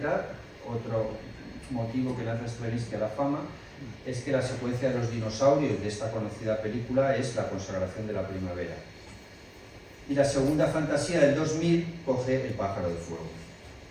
otro motivo que lanza Stravinsky a la fama es que la secuencia de los dinosaurios de esta conocida película es la consagración de la primavera. Y la segunda fantasía del 2000 coge El pájaro de fuego.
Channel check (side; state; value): both; identical; correlation 1.00